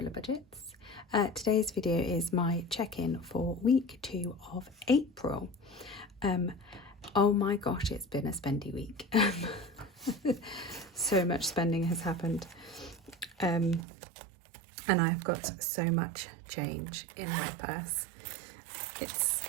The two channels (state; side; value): drops out; left; at 13.9 s